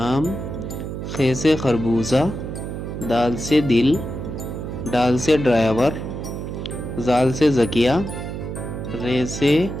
خے سے خربوزہ، دال سے دل، ڈال سے ڈرائیور، زال سے زکیہ، رے سے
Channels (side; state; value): right; noise; hum, 6 dB below the sound